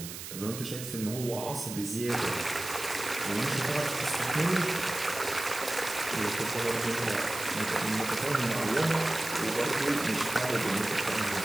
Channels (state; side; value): noise; right; hiss, 9 dB below the sound